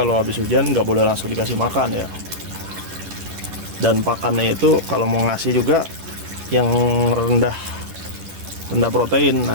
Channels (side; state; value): left; late; 11 ms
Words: habis hujan nggak boleh langsung dikasih makan ya. Dan pakannya itu kalau mau ngasih juga yang rendah protein.